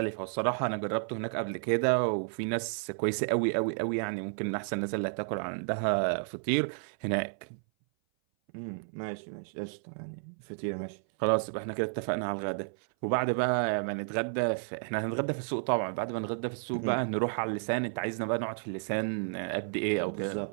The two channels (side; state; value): left; silent; 57 dB below the other